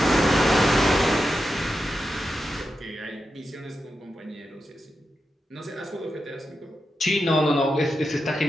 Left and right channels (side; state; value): both; normal; correlation 0.89